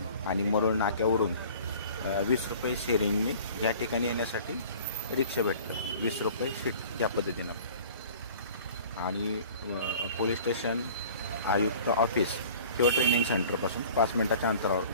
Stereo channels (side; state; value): both; inverted; correlation -0.46